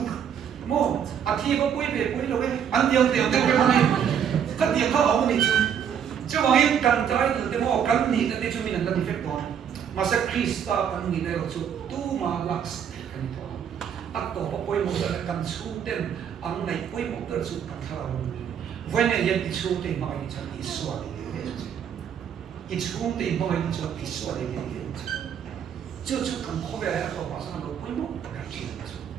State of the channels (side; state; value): left; quieter; 8.3 dB